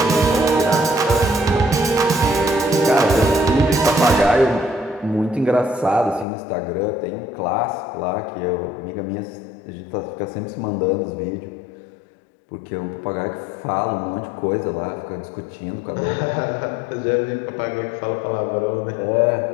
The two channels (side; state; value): right; drops out; at 6.2 s